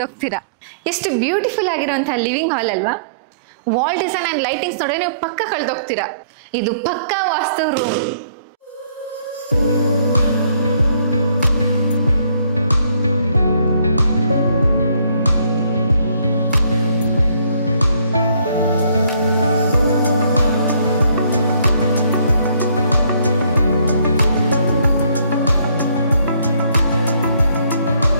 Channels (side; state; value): both; inverted; correlation -0.64